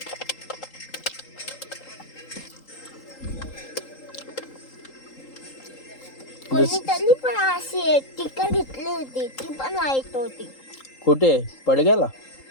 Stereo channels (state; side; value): late; right; 3.8 ms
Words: कोणीतरी पण अशी टिकर घेतली होती. ती पण वाईट होती. कुठे पडग्याला.